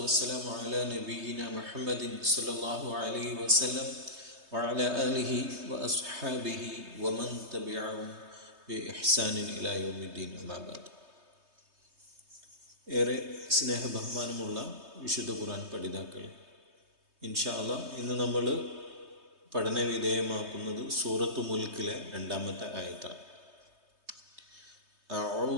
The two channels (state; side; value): late; left; 3.2 ms